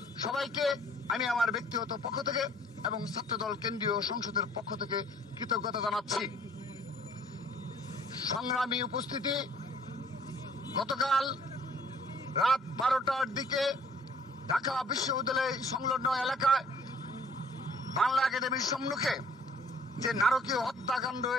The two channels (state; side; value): normal; both; correlation 0.57